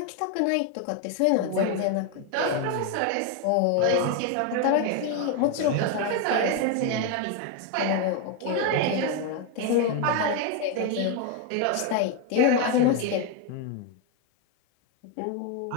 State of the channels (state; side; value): different; both; correlation 0.01